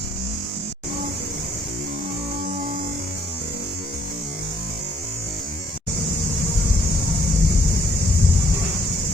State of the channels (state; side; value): normal; both; correlation 0.67